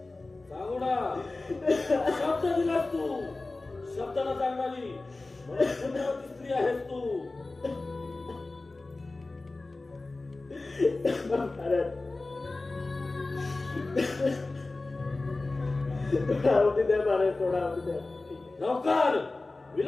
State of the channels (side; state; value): right; quieter; 3.3 dB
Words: सांगू ना शब्द दिलास तू, शब्दाला सांगणारी पुण्यवती स्त्री आहेस तू. महाराज, थोडा अवधी द्या महाराज, थोडा अवधी द्या. ठीक आहे. लवकर